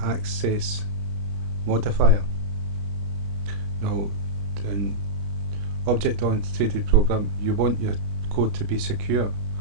access modifier. Now, in object-oriented program, you want your code to be secure.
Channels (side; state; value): left; late; 31 ms